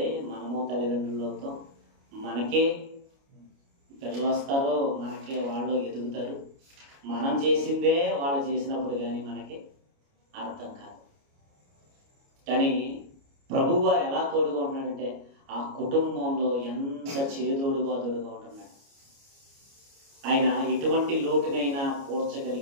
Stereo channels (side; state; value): left; late; 29 ms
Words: మనము తల్లిదండ్రులతో మనకే పిల్లలు వస్తారో, మనకే వాళ్ళు ఎదుగుతారు. మనం చేసిందే వాళ్ళు చేసినప్పుడు కానీ మనకి అర్థం కాదు. కానీ ప్రభువు వారు ఎలా తోడుగా ఉంటున్నాడంటే, ఆ కుటుంబంలో ఎంత చేదోడుగా ఉంటున్నాడు. ఆయన ఎటువంటి లోటునైనా